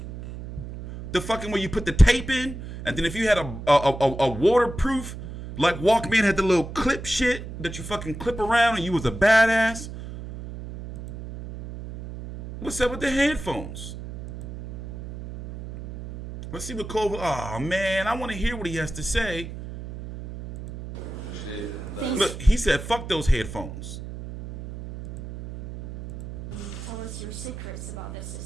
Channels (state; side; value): noise; right; hum, 10 dB below the sound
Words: The fucking where you put the tape in, and then if you had a waterproof, like Walkman had the little clip shit that you fucking clip around and you was a badass. What's up with the headphones? Let's see what Kovalev. Oh man, I want to hear what he has to say. Look, he said, "Fuck those headphones." What's your secrets about this